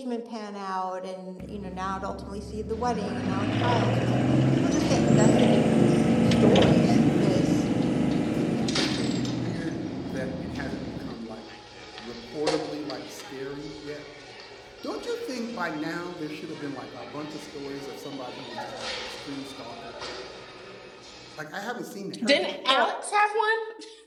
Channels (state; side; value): identical; both; correlation 1.00